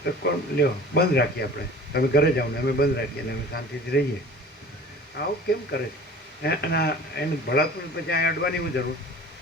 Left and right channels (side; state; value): both; normal; correlation 0.42